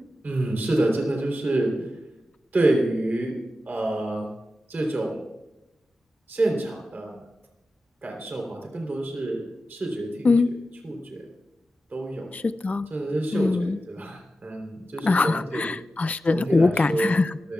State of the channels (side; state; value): both; normal; correlation 0.92